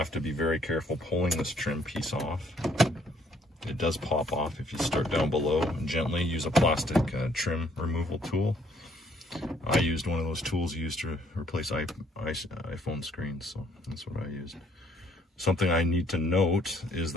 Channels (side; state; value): both; normal; correlation 0.64